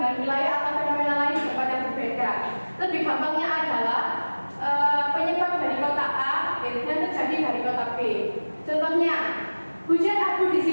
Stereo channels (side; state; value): both; inverted; correlation -1.00